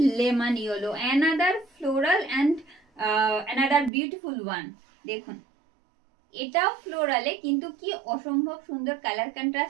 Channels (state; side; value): drops out; left; at 3.9 s